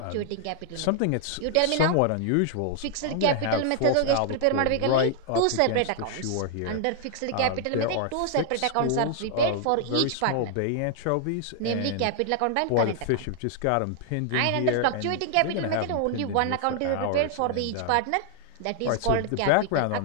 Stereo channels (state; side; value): different; both; correlation 0.00